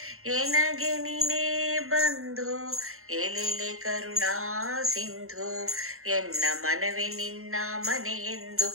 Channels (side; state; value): left; late; 0.62 ms